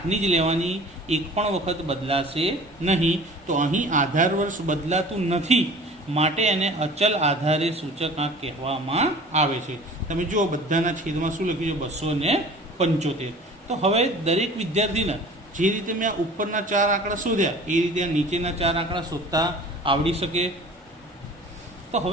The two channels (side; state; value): both; normal; correlation 0.44